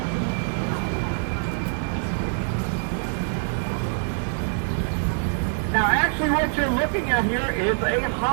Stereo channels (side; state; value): left; silent; digital silence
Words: Now actually what you're looking at here is a